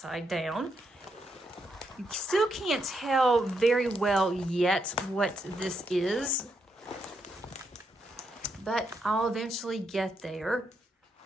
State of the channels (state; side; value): normal; both; correlation 0.79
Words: down. You still can't tell very well yet what this is, but I'll eventually get there.